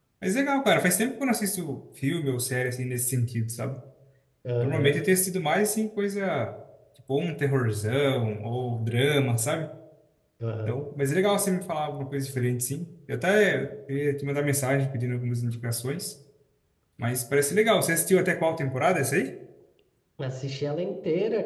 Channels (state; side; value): identical; both; correlation 1.00